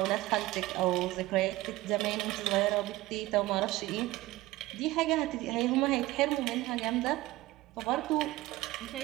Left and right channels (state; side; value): quieter; left; 18.2 dB